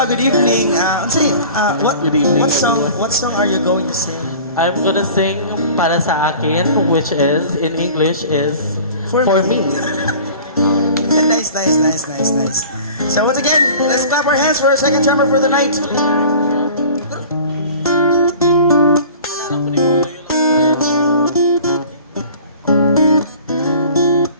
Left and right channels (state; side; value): inverted; both; correlation -0.43